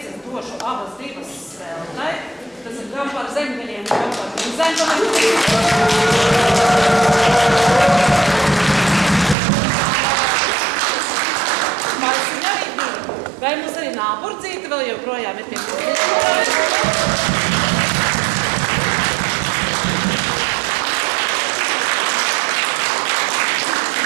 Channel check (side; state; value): left; drops out; at 9.3 s